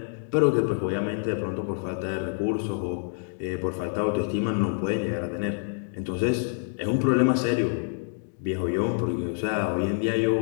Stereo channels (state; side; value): silent; right; 60 dB below the other